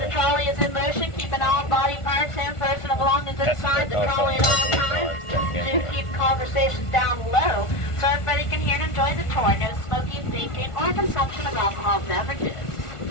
trolley is in motion, keeping all body parts and personal belongings inside the trolley at all times. Do keep conversations down low so everybody can hear and enjoy the tour. No smoking, drinking, or consumption of alcohol beverages.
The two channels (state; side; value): late; right; 1.5 ms